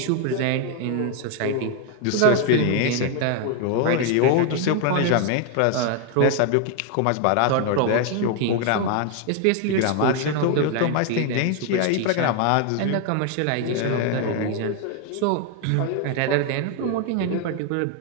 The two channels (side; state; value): both; different; correlation 0.01